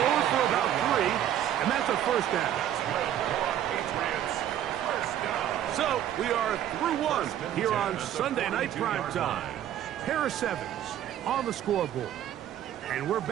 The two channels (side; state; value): left; quieter; 11.2 dB